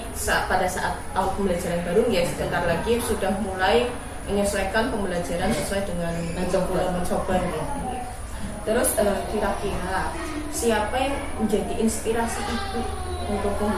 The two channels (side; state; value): both; identical; correlation 1.00